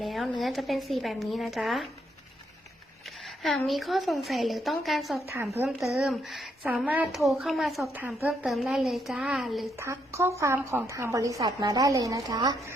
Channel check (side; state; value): both; normal; correlation 0.76